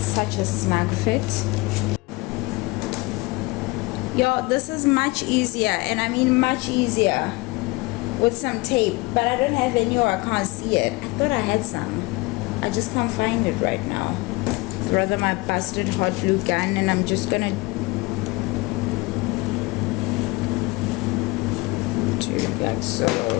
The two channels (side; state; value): right; quieter; 23.8 dB